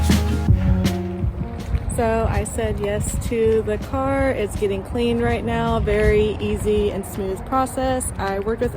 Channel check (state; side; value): identical; both; correlation 1.00